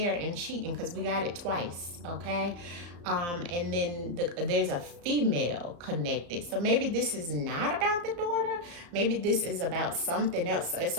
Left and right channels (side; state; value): left; late; 34 ms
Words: and cheating, because we got it twice, okay? And then there's a female connected. So maybe this is not about the daughter. Maybe this is about something else.